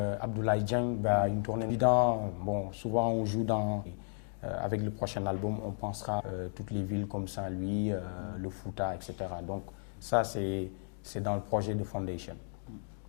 Dieng, une tournée évidente. Bon, souvent on joue avec le prochain album, on pensera toutes les villes comme Saint-Louis, le Fouta, etc. Donc ça, c'est dans le projet de Foundation.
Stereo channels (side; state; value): right; silent; digital silence